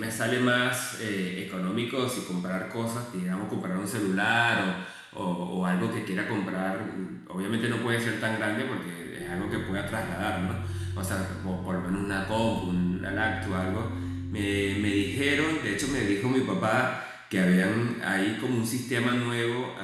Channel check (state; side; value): identical; both; correlation 1.00